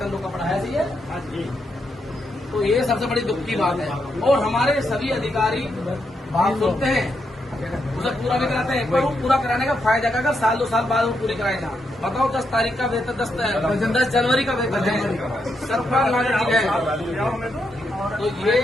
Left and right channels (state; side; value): normal; both; correlation 0.81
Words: रोका पड़ा है? ये तो ये सबसे बड़ी दुख की बात है। और हमारे सभी अधिकारी बात सुनते हैं उसे पूरा नहीं कराते हैं। एक बार वो पूरा कराने का फायदा क्या, अगर साल 2 साल बाद वो पूरी कराएगा। बताओ 10 तारीख का वेतन 10 जनवरी का वेतन है, सरकार नागरिक है। तो ये